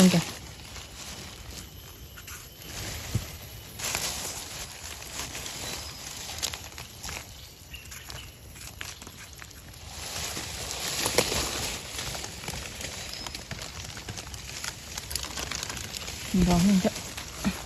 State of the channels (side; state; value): both; identical; correlation 1.00